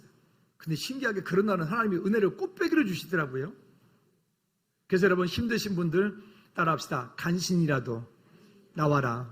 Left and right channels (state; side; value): identical; both; correlation 1.00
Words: 근데 신기하게 그런 날은 하나님이 은혜를 꽃배기로 주시더라고요. 그래서 여러분 힘드신 분들 따라합시다. 간신이라도